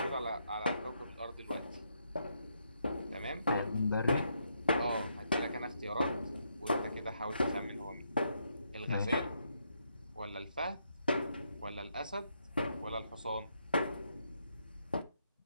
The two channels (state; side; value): inverted; both; correlation -0.77